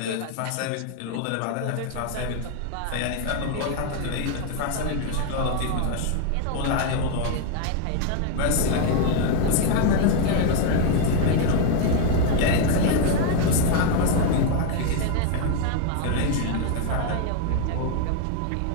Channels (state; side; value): different; both; correlation 0.01